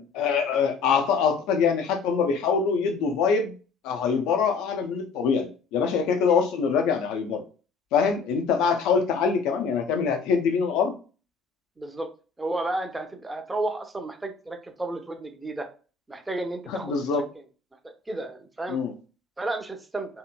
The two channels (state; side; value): quieter; right; 4.8 dB